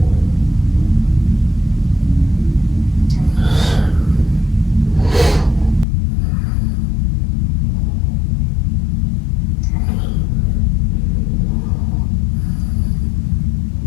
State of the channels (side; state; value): right; drops out; at 5.9 s